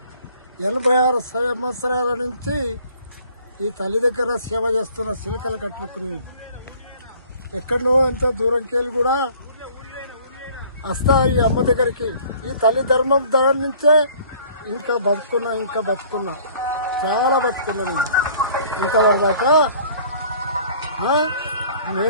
86 సంవత్సరాల నుంచి ఈ తల్లి దగ్గర సేవ చేస్తున్న సిలకలు కట్టుకుని ఎక్కడో ఎంతో దూరంకి వెళ్ళి కూడా వస్తా ఈ అమ్మ దగ్గరికి. ఈ తల్లి ధర్మం దాని నుంచే ఇంకా బతుకున్నా చాలా బతుకున్నా నేను ఇంతవరదాకా.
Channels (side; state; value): both; inverted; correlation -0.53